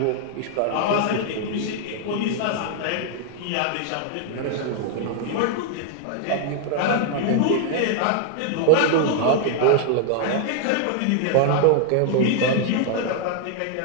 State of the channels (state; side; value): different; both; correlation 0.00